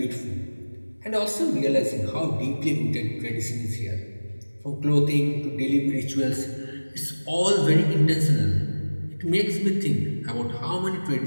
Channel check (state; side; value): inverted; both; correlation -1.00